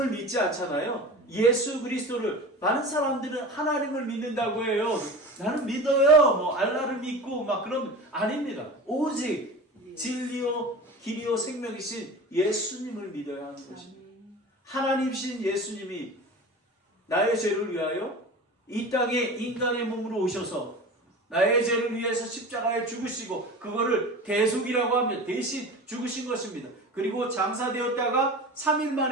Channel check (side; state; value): both; normal; correlation 0.34